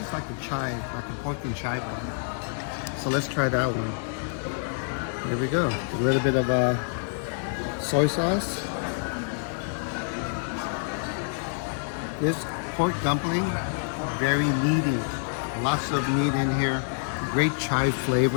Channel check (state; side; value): silent; right; digital silence